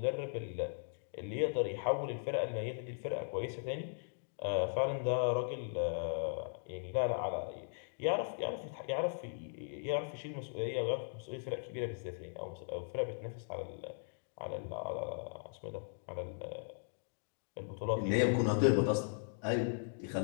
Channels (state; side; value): silent; right; digital silence